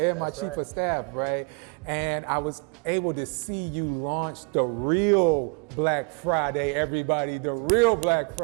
my chief of staff, right? And I was able to see you launch the real Black Friday, everybody, the real Black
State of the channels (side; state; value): left; quieter; 31.7 dB